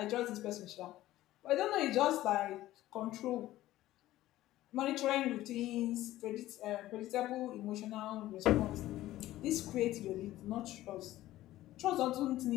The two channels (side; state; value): right; quieter; 15.3 dB